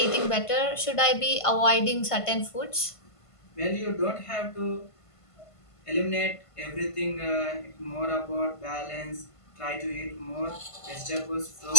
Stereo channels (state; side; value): late; right; 1.5 ms